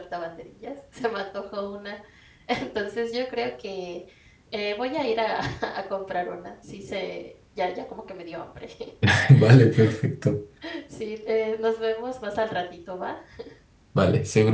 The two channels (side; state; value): both; identical; correlation 1.00